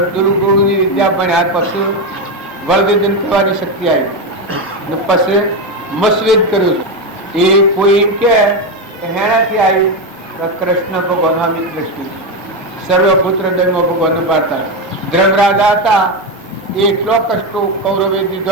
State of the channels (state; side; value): normal; both; correlation 0.11